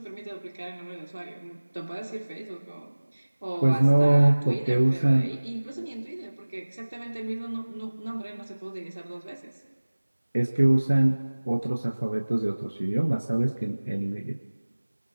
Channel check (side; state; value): both; inverted; correlation -1.00